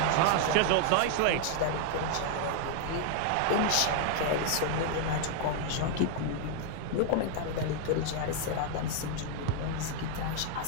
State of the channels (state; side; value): different; both; correlation 0.00